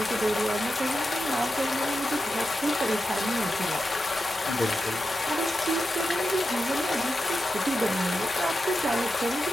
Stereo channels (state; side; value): normal; both; correlation 0.89